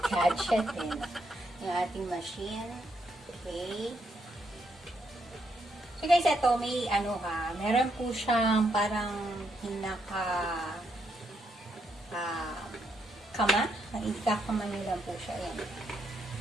din. Yung ating machine. Okay. So, guys, ito may meron po siyang parang kama. Ikakama nyo lang po siya. Ayan.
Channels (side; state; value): both; normal; correlation 0.77